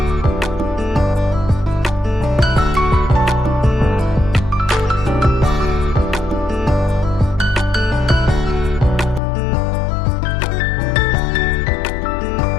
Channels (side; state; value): right; drops out; at 9.2 s